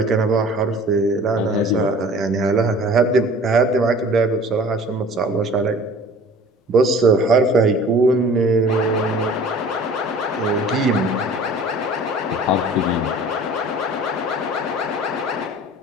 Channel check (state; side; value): normal; both; correlation 0.46